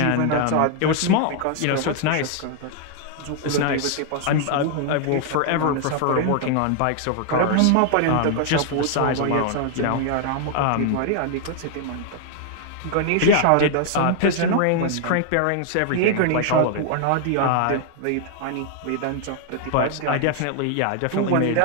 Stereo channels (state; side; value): different; both; correlation 0.00